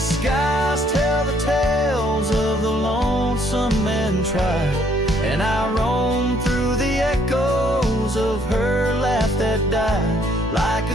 tell the tales of the lonesome and tried, and I roam through the echoes of her laugh that died. Like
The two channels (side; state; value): both; normal; correlation 0.66